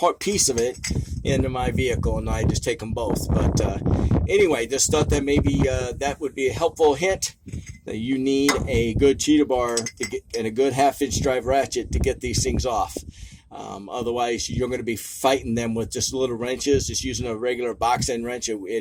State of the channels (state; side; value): identical; both; correlation 1.00